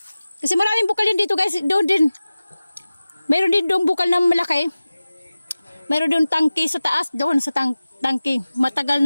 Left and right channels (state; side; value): inverted; both; correlation -0.96